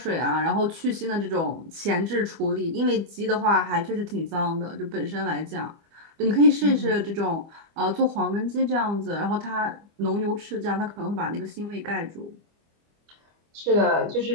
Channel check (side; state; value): left; late; 25 ms